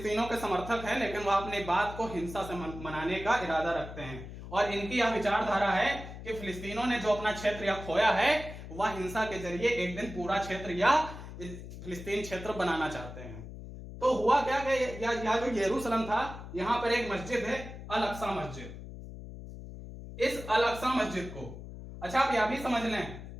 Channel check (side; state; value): left; noise; hum, 12 dB below the sound